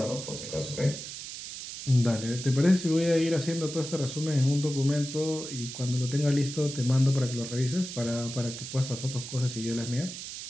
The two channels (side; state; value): right; noise; hiss, 9 dB below the sound